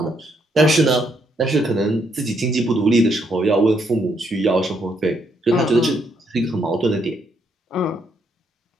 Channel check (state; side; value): normal; both; correlation 0.74